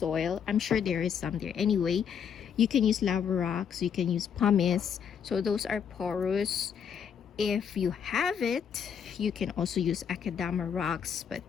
I'm sure there is some there. Anyway, you can use lava rocks, you can use pumice. So those are porous. If you have it, you can also use akadama rocks, but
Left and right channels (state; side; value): quieter; right; 7.7 dB